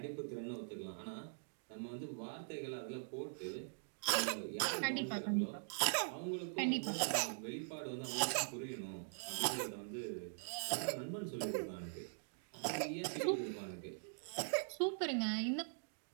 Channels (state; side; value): silent; left; digital silence